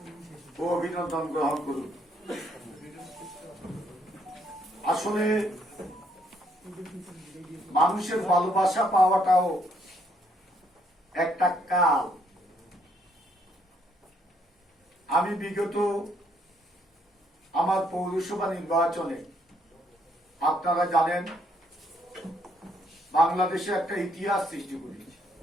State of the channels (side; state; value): both; normal; correlation 0.70